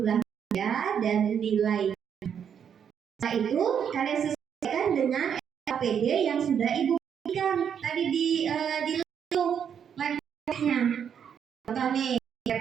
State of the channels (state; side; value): quieter; left; 8.0 dB